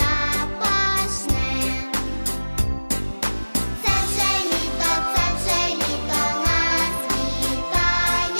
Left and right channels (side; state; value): both; inverted; correlation -1.00